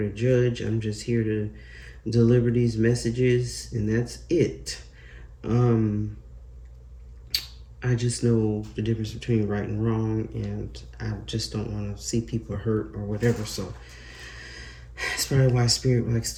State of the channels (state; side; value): identical; both; correlation 1.00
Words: judge. I'm just here to deliver these messages, and that's it. I just know the difference between right and wrong, and I just don't want to see people hurt or whatever. So that's probably why Spirit likes